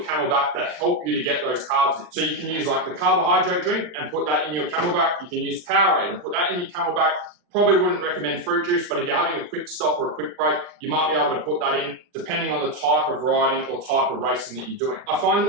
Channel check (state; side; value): late; left; 40 ms